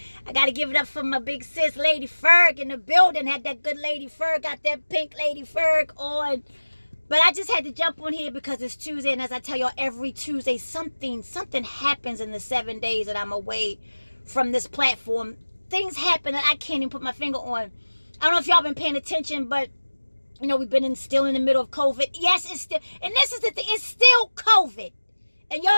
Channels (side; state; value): both; inverted; correlation -1.00